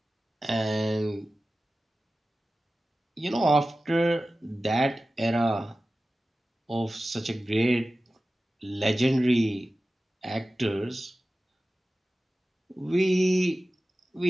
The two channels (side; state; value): both; normal; correlation 0.95